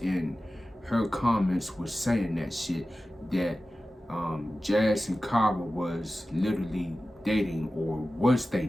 her comments was saying that shit, that Jazz and Kyhra was literally dating, or was they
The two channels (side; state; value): both; normal; correlation 0.95